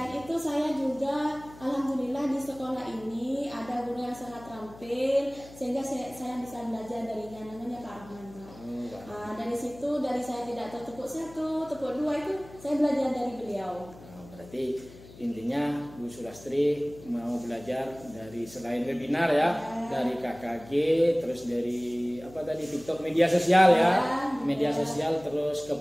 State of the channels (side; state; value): left; noise; hum, 19 dB below the sound